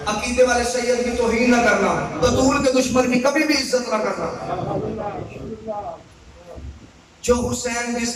عقیدے والے سید کی توہین نہ کرنا، بطول کے دشمن کی کبھی بھی عزت نہ کرنا۔ جو حسین جس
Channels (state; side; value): identical; both; correlation 1.00